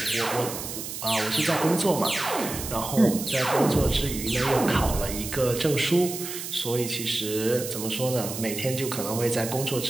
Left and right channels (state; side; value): noise; right; hiss, 7 dB below the sound